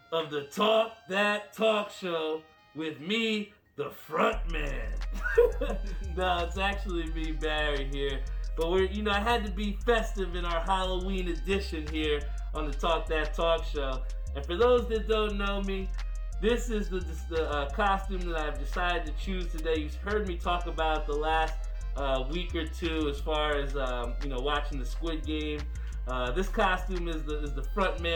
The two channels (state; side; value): identical; both; correlation 1.00